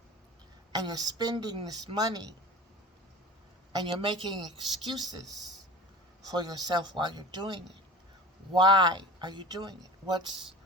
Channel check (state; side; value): normal; both; correlation 0.37